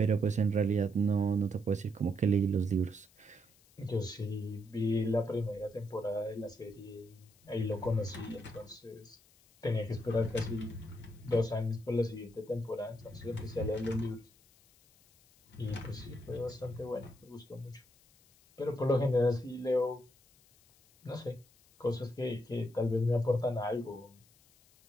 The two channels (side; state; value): left; noise; hiss, 29 dB below the sound